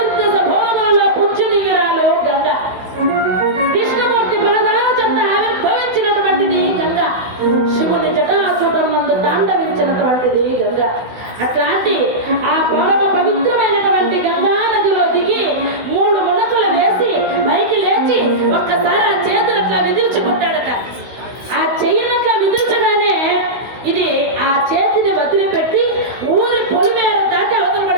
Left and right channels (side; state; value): left; late; 16 ms